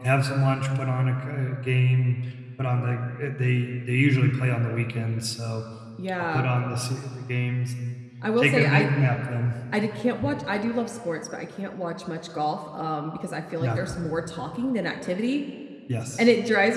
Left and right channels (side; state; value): both; identical; correlation 1.00